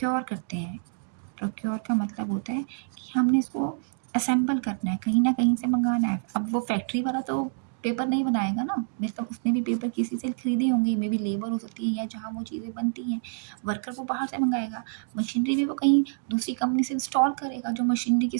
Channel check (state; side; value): silent; left; digital silence